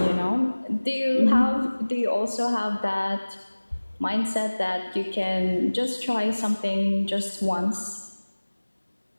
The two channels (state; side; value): inverted; both; correlation -1.00